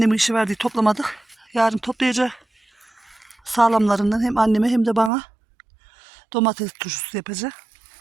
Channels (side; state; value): left; drops out; at 5.1 s